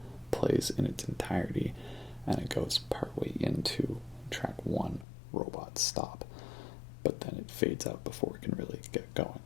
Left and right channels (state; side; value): drops out; right; at 5.1 s